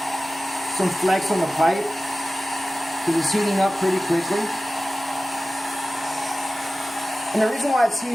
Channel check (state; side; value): normal; both; correlation 0.96